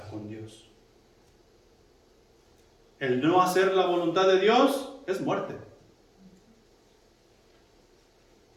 con Dios. El no hacer la voluntad de Dios es muerte.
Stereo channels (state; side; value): identical; both; correlation 1.00